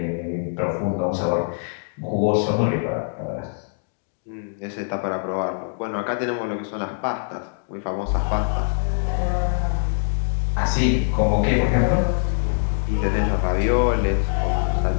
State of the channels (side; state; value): right; silent; digital silence